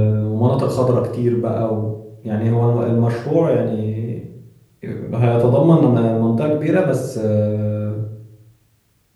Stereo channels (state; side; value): identical; both; correlation 1.00